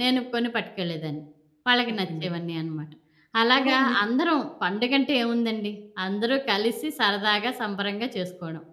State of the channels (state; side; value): identical; both; correlation 1.00